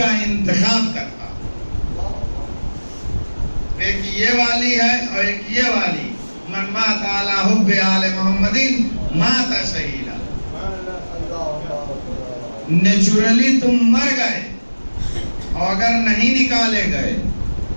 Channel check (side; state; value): both; inverted; correlation -1.00